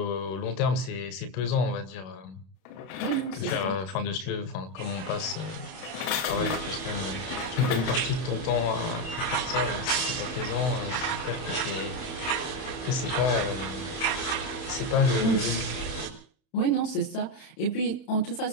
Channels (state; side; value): late; right; 32 ms